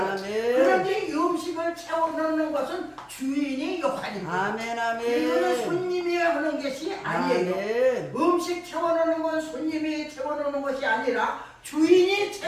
아멘. 그런데 이 음식을 채워넣는 것은 주인의 역할입니다. 아멘. 이거는 아멘. 손님이 하는 것이 아니에요. 아멘. 음식 채워넣는 건 손님이 채워넣는 것이 아니라 주인이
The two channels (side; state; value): both; identical; correlation 1.00